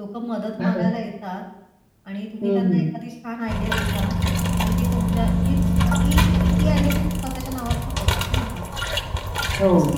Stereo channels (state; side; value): identical; both; correlation 1.00